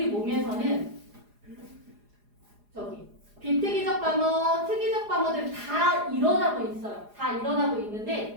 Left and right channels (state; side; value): late; left; 4.8 ms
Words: 몸에서는 저기 비특이적 방어, 특이적 방어들이 다 일어나고 있어요. 다 일어나고